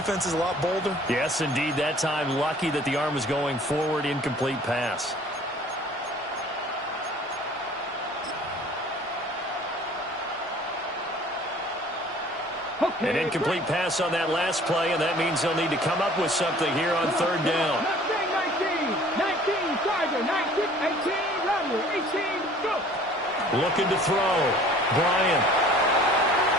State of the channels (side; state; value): both; normal; correlation 0.51